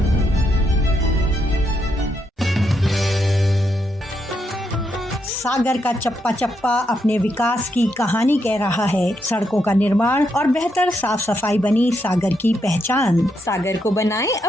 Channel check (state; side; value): normal; both; correlation 0.79